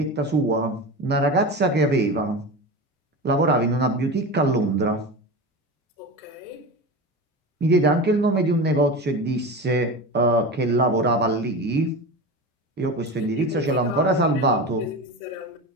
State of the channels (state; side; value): normal; both; correlation 0.27